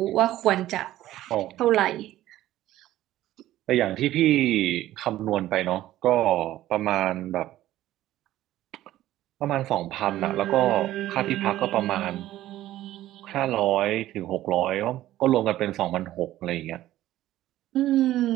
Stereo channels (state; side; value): quieter; left; 14.4 dB